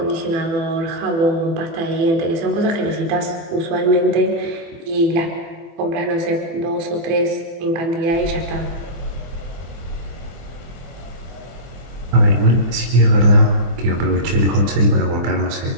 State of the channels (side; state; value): left; late; 24 ms